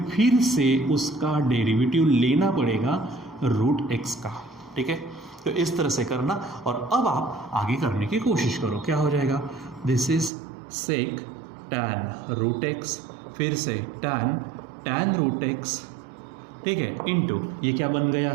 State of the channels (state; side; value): drops out; left; at 10.3 s